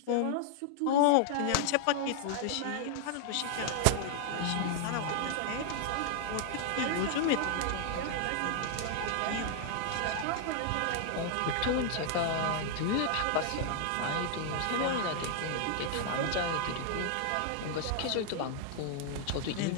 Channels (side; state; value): both; different; correlation 0.00